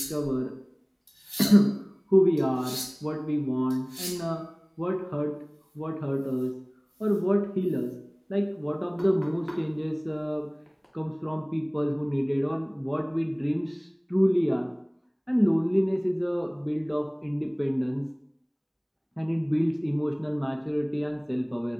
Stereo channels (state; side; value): identical; both; correlation 1.00